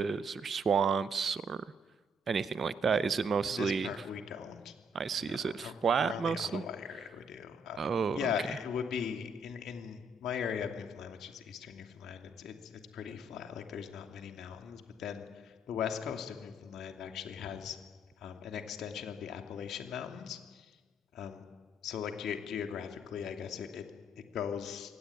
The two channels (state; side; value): normal; both; correlation 0.70